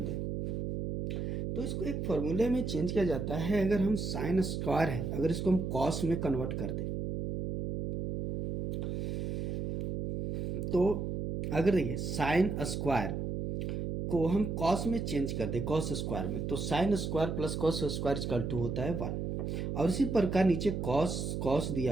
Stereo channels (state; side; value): noise; right; hum, 3 dB below the sound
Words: दें तो इसको एक फॉर्मूले में चेंज किया जाता है। अगर हम साइन स्क्वायर है, अगर इसको हम कॉस में कन्वर्ट कर दें तो अगर देखिए साइन स्क्वायर को हम कॉस में चेंज कर दें, कॉस स्क्वायर में, तो sine square plus cos square equal to होता है 1। और इसी प्रकार नीचे कॉस